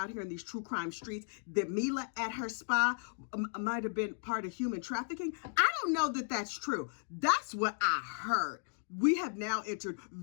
here in these true crime streets that Mila at her spa might have been part of human trafficking. I don't know that that's true. That's what I heard. We have now entered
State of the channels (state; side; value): silent; right; 54 dB below the other